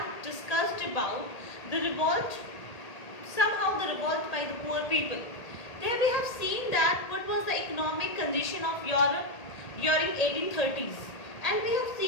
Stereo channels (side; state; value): right; late; 1.8 ms